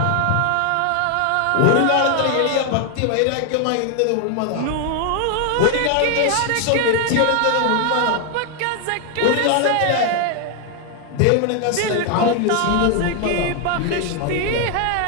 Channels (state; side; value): different; both; correlation 0.00